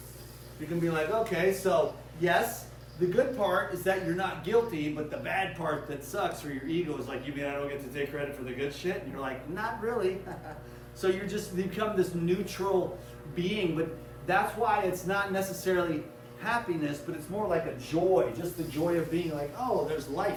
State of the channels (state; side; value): identical; both; correlation 1.00